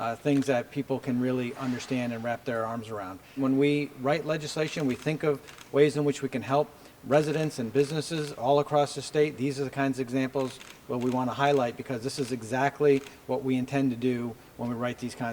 things that people can really understand and wrap their arms around. When we write legislation, we think of ways in which we can help residents and businesses all across the state. These are the kinds of examples that we want to highlight because this is exactly what we intend to do when we write these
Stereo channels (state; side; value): identical; both; correlation 1.00